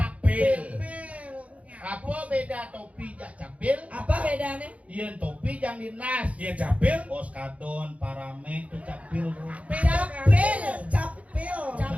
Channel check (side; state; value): left; late; 0.066 ms